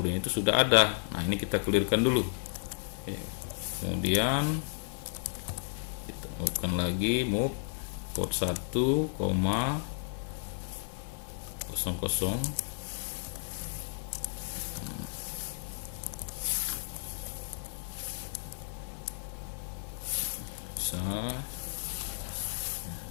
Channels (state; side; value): silent; right; digital silence